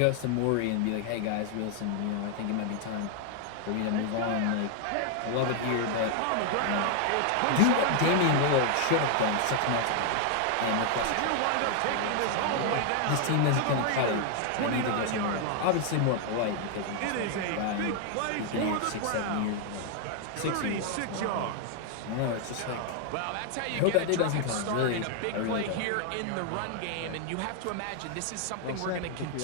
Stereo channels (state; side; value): different; both; correlation 0.00